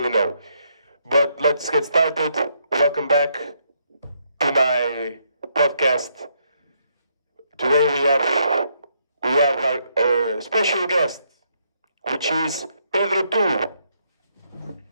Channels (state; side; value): inverted; both; correlation -0.75